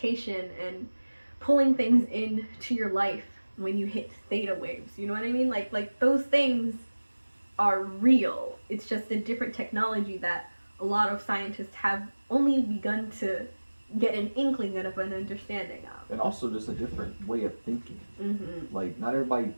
and pulling things into your life when you hit theta waves, you know what I mean? Like those things are real. It's just a different technology that a lot of scientists have only begun to get an inkling of an understanding of. And also just a different way of thinking. Mm-hmm. Like, not everybody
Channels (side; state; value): both; inverted; correlation -1.00